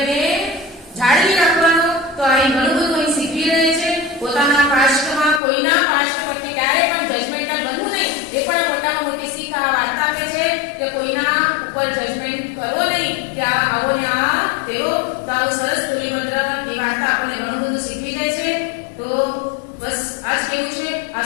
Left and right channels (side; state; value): right; drops out; at 5.4 s